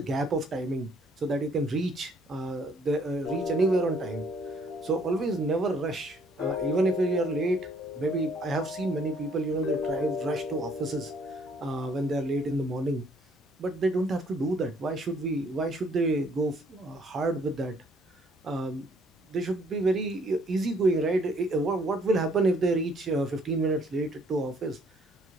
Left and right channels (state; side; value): normal; both; correlation 0.63